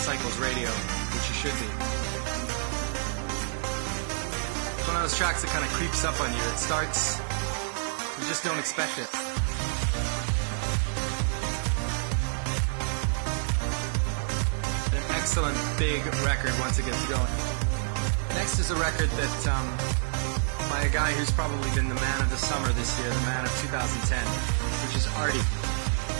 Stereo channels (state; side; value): silent; left; 55 dB below the other